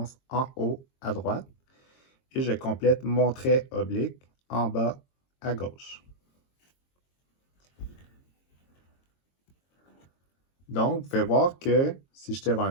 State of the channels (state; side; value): late; right; 22 ms